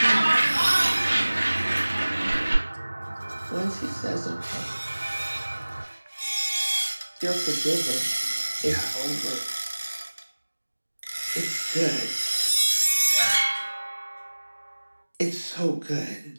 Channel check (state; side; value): inverted; both; correlation -1.00